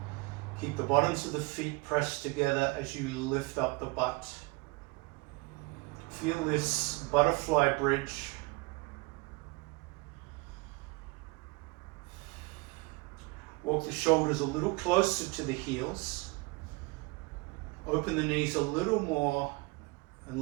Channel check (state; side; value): quieter; left; 25.7 dB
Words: Keep the bottoms of the feet pressed together as you lift up the butt. Feel this butterfly bridge. Walk the shoulders a little closer to the heels. Open the knees a little more